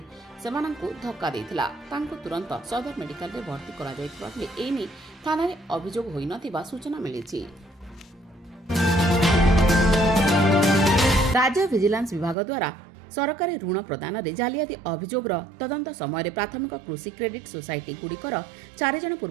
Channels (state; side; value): drops out; left; at 12.4 s